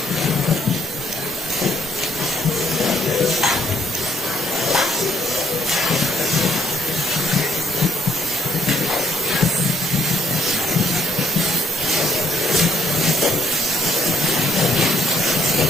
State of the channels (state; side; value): normal; both; correlation 0.68